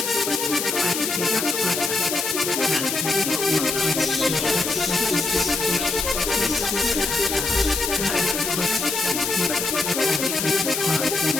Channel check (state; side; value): noise; left; hiss, 2 dB below the sound